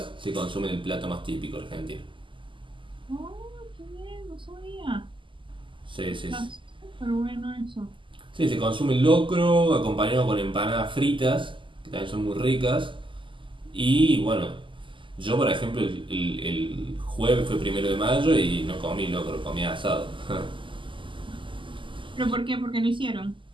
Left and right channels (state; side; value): late; left; 0.25 ms